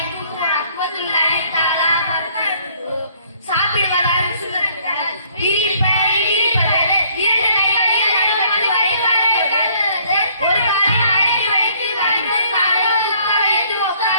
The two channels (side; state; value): both; inverted; correlation -0.62